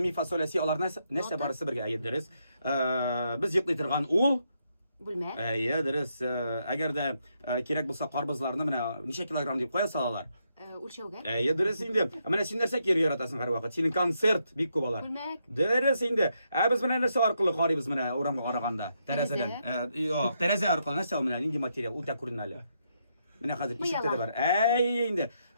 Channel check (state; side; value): inverted; both; correlation -0.79